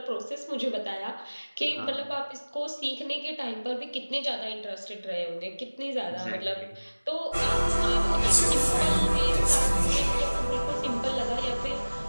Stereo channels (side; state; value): both; inverted; correlation -1.00